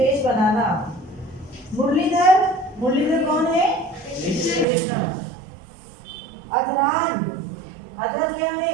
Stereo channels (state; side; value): drops out; left; at 4.7 s